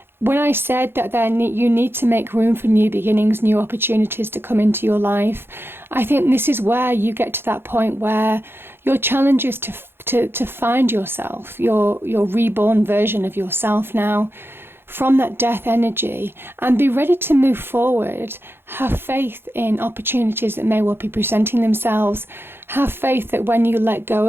When I said that you need to make room for new beginnings, new opportunities to come into your life, I think this is where you get to that point where your challenge is to find yourself, your reborn version of yourself now, from that death energy, and be ready to move forward. Have faith in opportunities that may well be presenting themselves. Have faith that when you let go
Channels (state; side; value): late; left; 0.11 ms